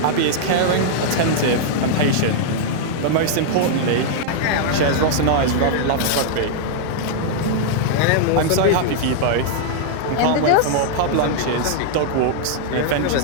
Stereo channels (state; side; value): different; both; correlation -0.01